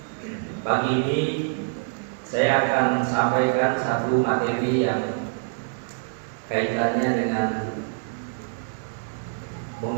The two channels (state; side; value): silent; left; digital silence